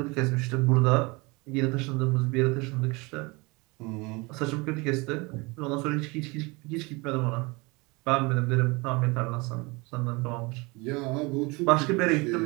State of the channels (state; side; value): quieter; left; 26.2 dB